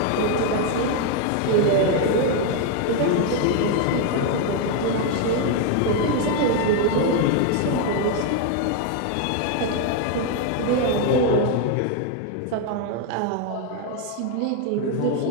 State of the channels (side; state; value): both; different; correlation 0.01